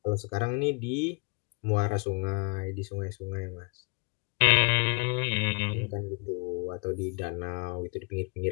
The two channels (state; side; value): quieter; right; 32.5 dB